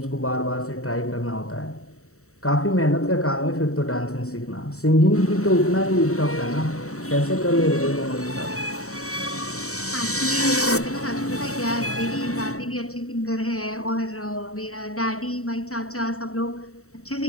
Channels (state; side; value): late; right; 0.64 ms